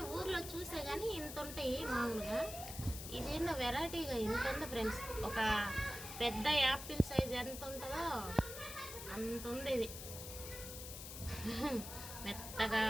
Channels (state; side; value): noise; left; hiss, 9 dB below the sound